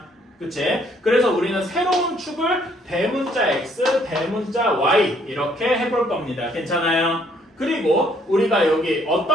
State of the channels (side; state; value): both; normal; correlation 0.65